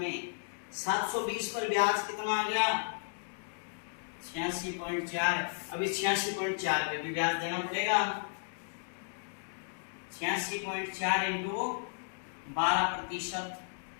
720 पर ब्याज कितना आ गया? 86.4। अभी 86.4 पे भी ब्याज देना पड़ेगा। 86.4 इंटू 12%,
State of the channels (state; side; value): silent; right; digital silence